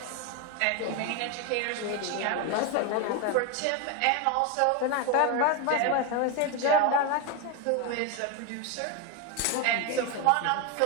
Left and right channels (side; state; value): both; different; correlation 0.02